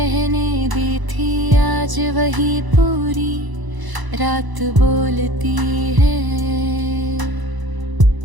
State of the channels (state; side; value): late; left; 1.0 ms